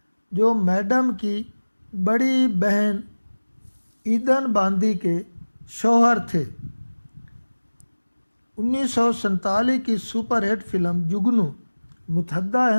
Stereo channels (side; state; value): both; inverted; correlation -1.00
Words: جو میڈم کی بڑی بہن ایدن باندی کے شوہر تھے۔ 1947 کی سپر ہٹ فلم جگنو متحدہ